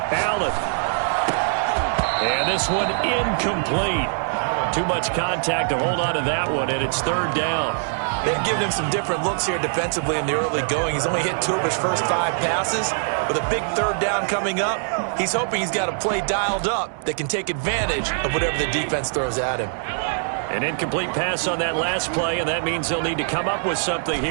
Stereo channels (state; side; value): silent; left; 63 dB below the other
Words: Allen. And this one incomplete. Too much contact to hold on to that one, and it's 3rd down. They've given him some different looks here defensively in the early going. He's only hit 2 of his first 5 passes. With a big 3rd down coming up, he's hoping he's got a play dialed up that can take advantage of whatever the defense throws at him. An incomplete pass on that last play, and that means they'll need to come up with something